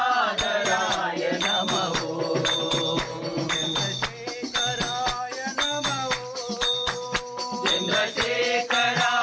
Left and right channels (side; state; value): both; identical; correlation 1.00